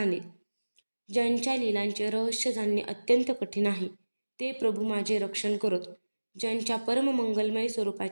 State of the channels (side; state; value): both; inverted; correlation -1.00